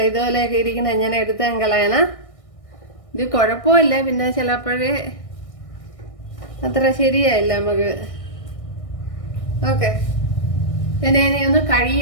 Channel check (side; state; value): right; late; 1.6 ms